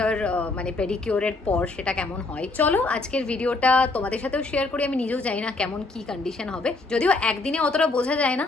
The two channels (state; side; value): quieter; right; 3.4 dB